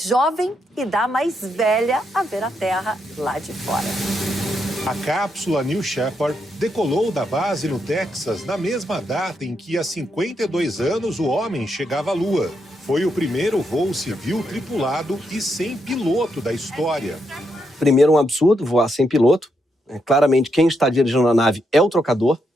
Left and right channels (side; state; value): both; normal; correlation 0.80